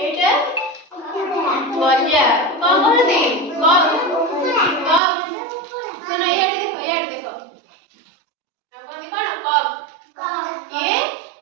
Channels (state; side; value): drops out; left; at 5.0 s